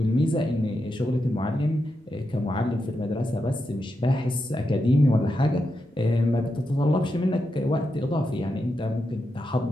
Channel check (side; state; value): both; normal; correlation 0.86